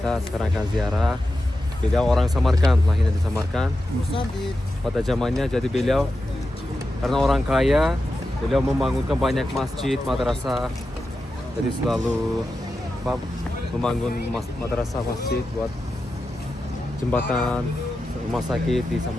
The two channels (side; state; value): both; normal; correlation 0.91